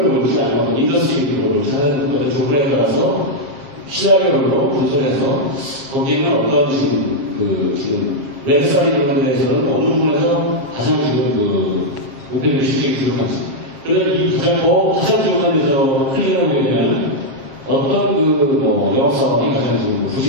볼지, 아니면 인더스트리별로 볼지 하는 어떤 조건에 따라서 시나리오별로 분석해서 거기에는 어떤 지금 웹사이트 이런 데에서는 어느 부분에서 가장 지금 목표 대비 실적이 부족한지. 그러면 이 가장 부족한 데서 클릭을 보게 되면 어떤 영업사업이 가장 지금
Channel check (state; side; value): late; left; 7.5 ms